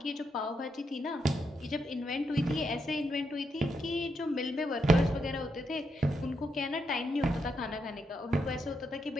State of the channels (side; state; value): both; normal; correlation 0.81